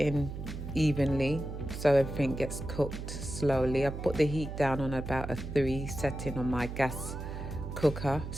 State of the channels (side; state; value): right; noise; hum, 7 dB below the sound